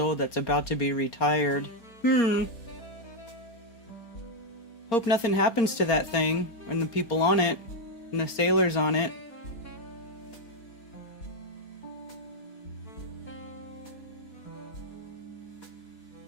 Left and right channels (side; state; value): right; late; 4.3 ms